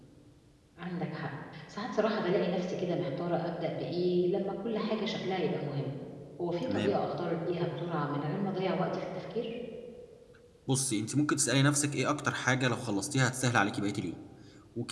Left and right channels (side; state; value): both; identical; correlation 1.00